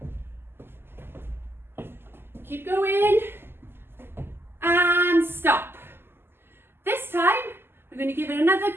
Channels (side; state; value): left; late; 0.11 ms